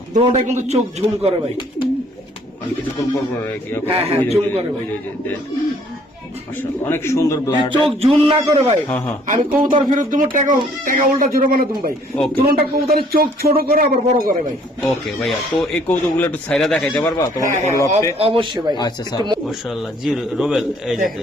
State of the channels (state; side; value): normal; both; correlation 0.61